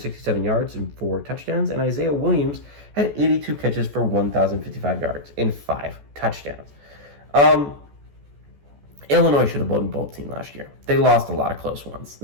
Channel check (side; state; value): left; late; 14 ms